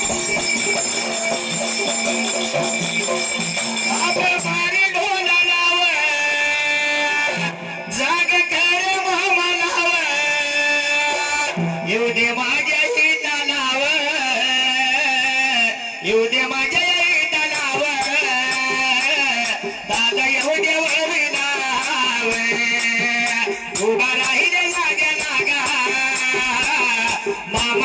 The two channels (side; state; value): both; identical; correlation 1.00